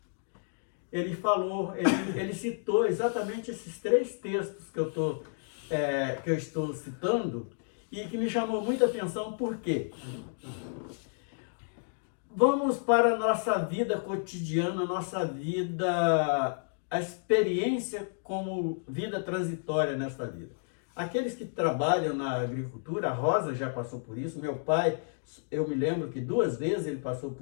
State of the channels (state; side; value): silent; right; digital silence